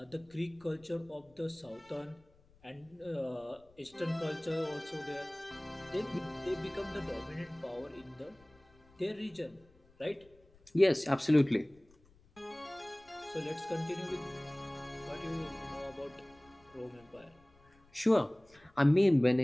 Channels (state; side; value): noise; left; rumble, 29 dB below the sound